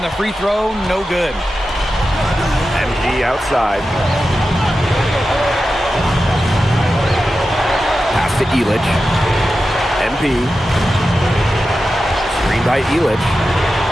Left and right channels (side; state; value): both; normal; correlation 0.92